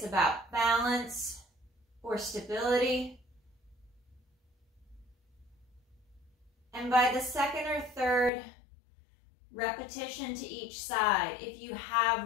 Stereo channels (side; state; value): right; drops out; at 8.3 s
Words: about balance or stability. And by the second or third repetition to each side, if you